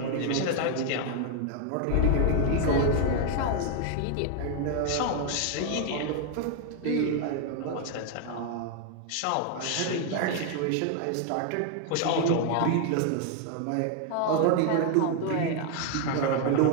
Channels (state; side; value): different; both; correlation 0.00